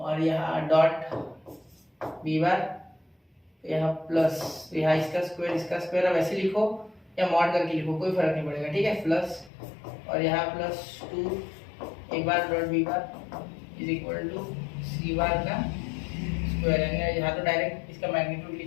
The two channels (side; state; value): right; drops out; at 9.5 s